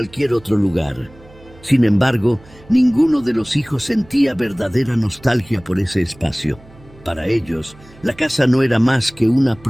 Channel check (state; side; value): noise; right; hum, 24 dB below the sound